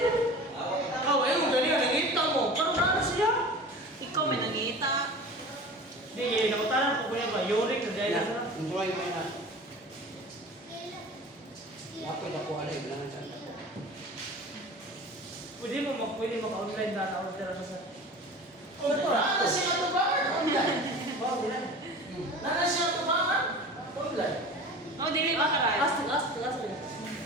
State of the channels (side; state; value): both; normal; correlation 0.37